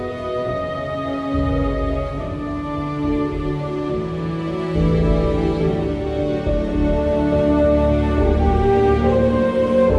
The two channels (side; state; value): both; identical; correlation 1.00